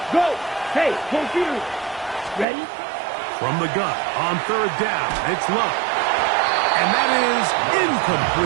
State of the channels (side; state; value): left; drops out; at 2.5 s